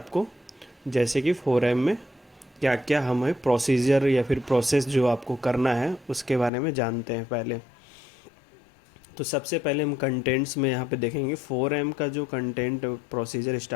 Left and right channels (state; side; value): drops out; right; at 6.5 s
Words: जैसे कि 4M में क्या क्या हमें प्रोसीजर या फिर प्रोसेस जो आपको करना है उसके बारे में जानते हैं पहले। तो सबसे पहले हम कंटेंट्स में यहाँ पे देखेंगे 4M का जो कंटेंट प्रोसीजर